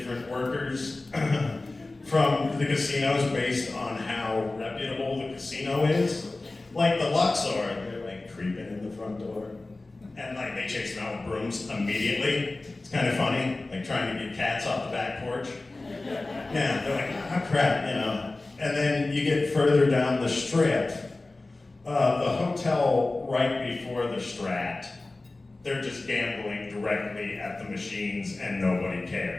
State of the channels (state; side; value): quieter; right; 3.1 dB